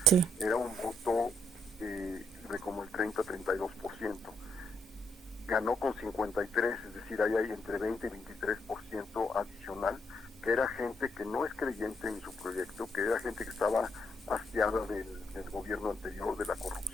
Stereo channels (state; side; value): normal; both; correlation 0.75